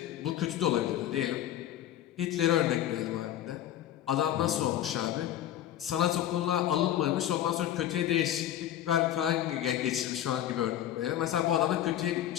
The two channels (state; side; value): quieter; right; 11.7 dB